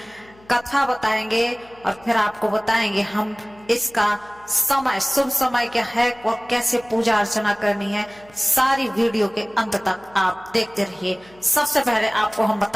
कथा बताएंगे और फिर आपको बताएंगे हम इसका समय, शुभ समय क्या है और कैसे पूजा अर्चना करनी है। सारी वीडियो के अंत तक आप देखते रहिए। सबसे पहले आपको हम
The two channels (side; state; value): left; noise; hum, 27 dB below the sound